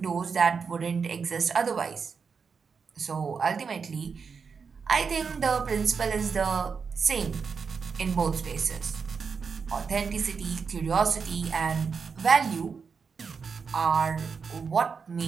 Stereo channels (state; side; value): quieter; left; 5.6 dB